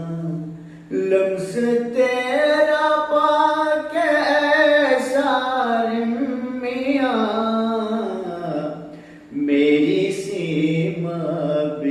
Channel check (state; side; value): identical; both; correlation 1.00